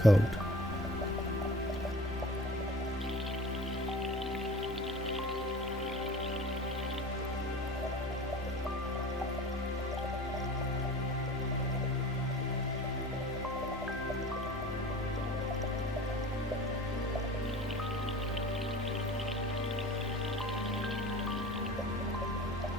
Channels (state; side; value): normal; both; correlation 0.41